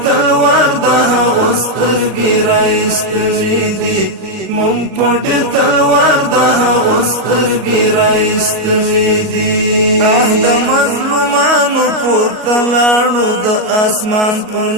تلوار د هغو سترګې راایستلې دي مونږ په ډېر تلوار د هغو سترګې راایستلې دي د مظلومانو پورته لاړو د اسمان په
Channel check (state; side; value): late; left; 37 ms